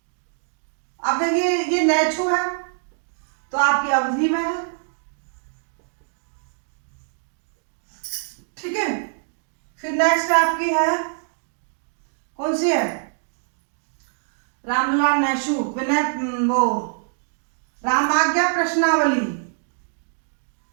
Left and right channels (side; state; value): left; silent; digital silence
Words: अब देखिए ये नहछू है तो आपकी अवधि में है। ठीक है। फिर नेक्स्ट आपकी है, कौन सी है? रामलला नहछू विनय वो रामाज्ञा प्रश्नावली,